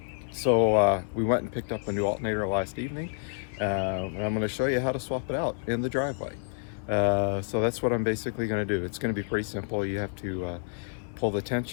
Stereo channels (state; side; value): silent; right; 59 dB below the other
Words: So we went and picked up a new alternator last evening, and I'm going to show you how to swap it out in the driveway. So that's what I'm basically going to do. It's going to be pretty simple. You have to pull the